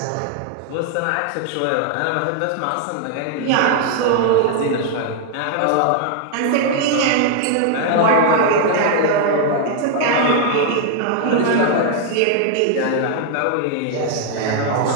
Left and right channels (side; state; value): both; different; correlation 0.00